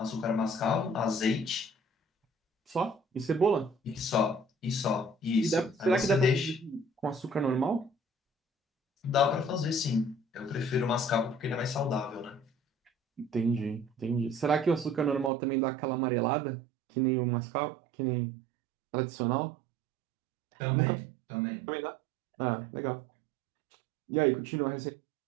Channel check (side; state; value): left; drops out; at 15.3 s